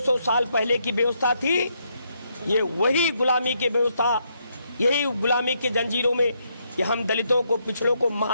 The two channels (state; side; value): inverted; both; correlation -0.76